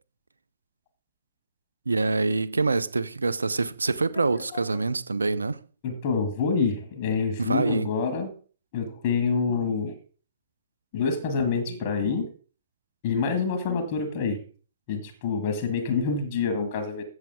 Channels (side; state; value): both; inverted; correlation -0.63